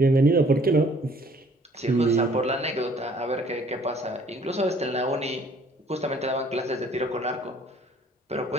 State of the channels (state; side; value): normal; both; correlation 0.58